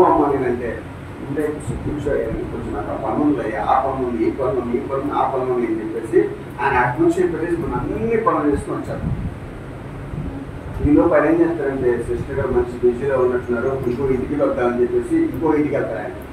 అమ్మ నేనంటే ఉంటే కూర్చోయాలి, కొంచెం నాకు ఆ పనులు ఆ పనులు ఈ పనులు ఆ పనులు అని చెప్పేసి ఆయన అటు నుంచి పెట్టేసి మనం అన్ని పనులు చేసుకొని వచ్చారు. ఈలో పని ఏం చేస్తారంటే, సిస్టర్ గారు మంచి బిజీలో ఉన్నట్టున్నారు, ఇంకో ఇంటికి వద్దామని చెప్పేసి ఇంకో ఇంటికి వెళ్తారు. ఆయన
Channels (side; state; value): both; identical; correlation 1.00